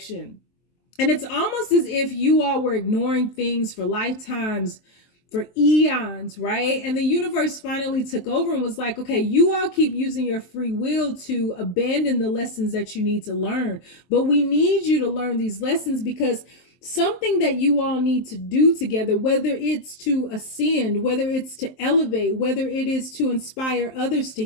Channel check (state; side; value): late; right; 23 ms